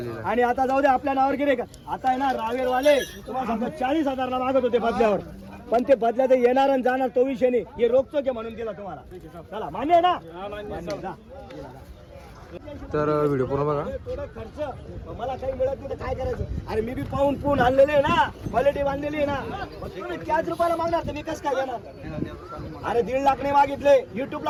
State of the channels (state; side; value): identical; both; correlation 1.00